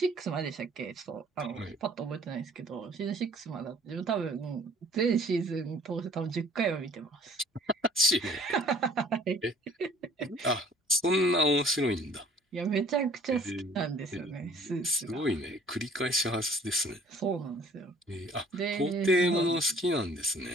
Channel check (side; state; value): both; normal; correlation 0.53